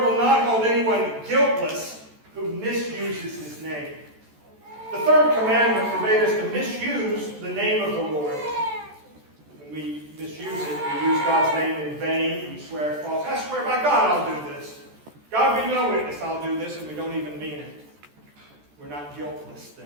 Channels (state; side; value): late; left; 14 ms